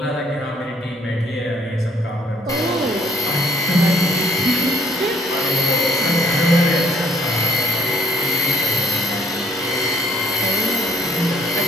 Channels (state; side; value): normal; both; correlation 0.65